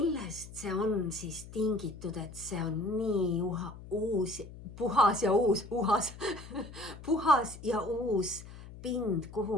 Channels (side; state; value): left; noise; hum, 15 dB below the sound